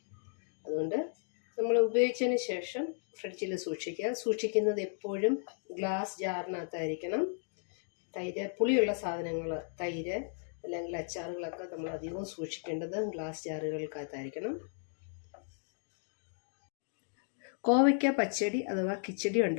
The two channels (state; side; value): silent; right; digital silence